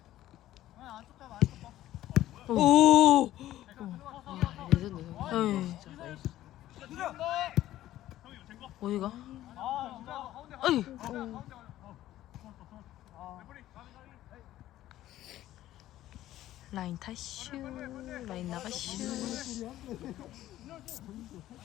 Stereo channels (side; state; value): right; quieter; 14.0 dB